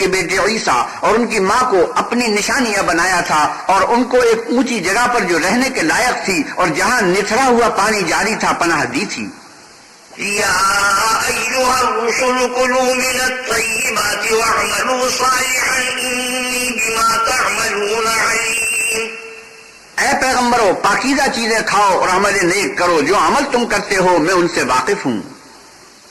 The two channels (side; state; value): both; identical; correlation 1.00